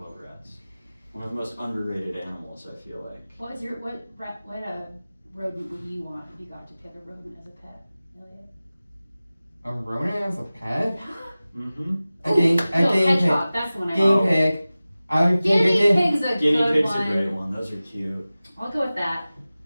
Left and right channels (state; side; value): inverted; both; correlation -0.97